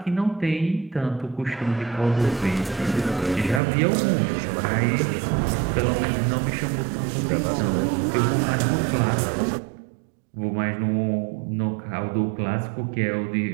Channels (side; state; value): left; drops out; at 3.6 s